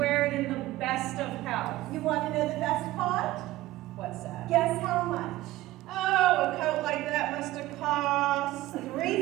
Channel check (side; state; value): left; quieter; 16.7 dB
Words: it in the best of health. You want to know the best part? What's that? Guess how much? Oh, a coat like that must have cost